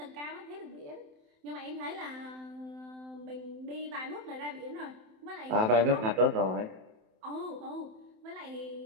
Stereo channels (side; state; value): left; late; 27 ms